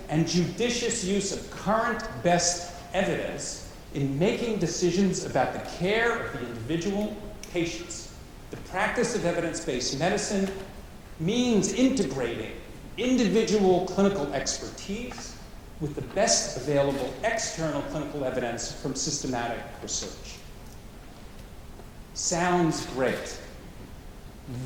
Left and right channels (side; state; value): both; identical; correlation 1.00